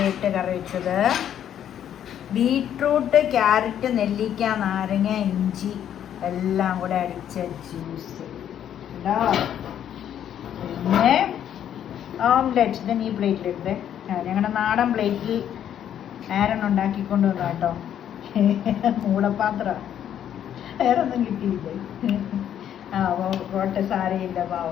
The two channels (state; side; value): quieter; right; 10.0 dB